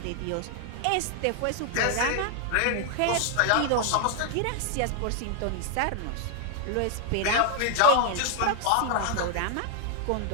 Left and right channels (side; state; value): both; different; correlation 0.00